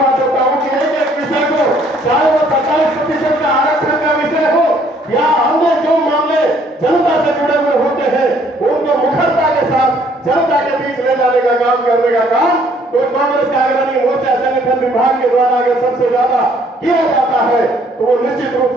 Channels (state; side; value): normal; both; correlation 0.63